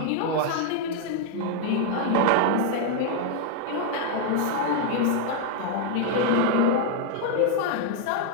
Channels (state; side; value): different; both; correlation 0.00